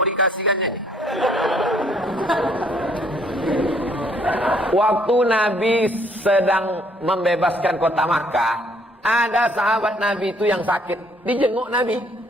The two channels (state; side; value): normal; both; correlation 0.64